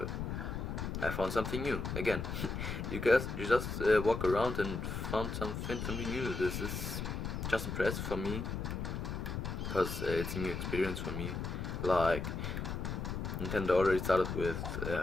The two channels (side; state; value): left; noise; rumble, 3 dB below the sound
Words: I found something new again. you just walk around and found something new. This is just impressive for me, because it's a new experience for me. Like, Nintendo already started with